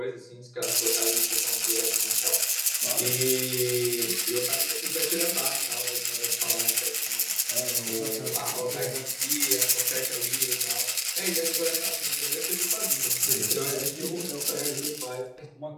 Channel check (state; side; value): identical; both; correlation 1.00